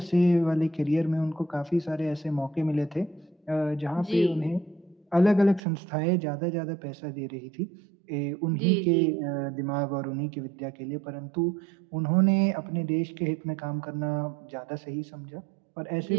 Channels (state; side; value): drops out; left; at 5.6 s